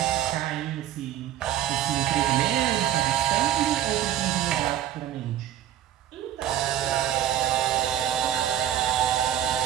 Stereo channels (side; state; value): left; quieter; 11.4 dB